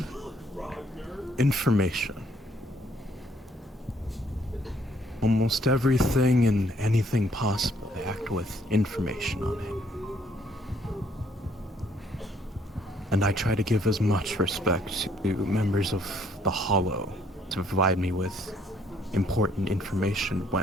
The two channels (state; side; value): normal; both; correlation 0.66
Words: Information. Almost everything and anything possible, I act with information on it. And I try to give as much respect to members of the Hollow to provide me with important information